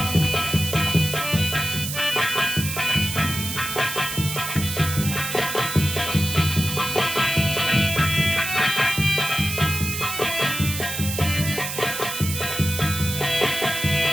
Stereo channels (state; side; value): noise; right; hiss, 5 dB below the sound